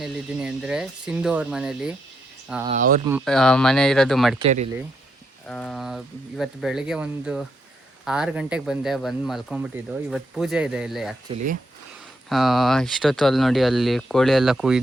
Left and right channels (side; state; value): both; normal; correlation 0.79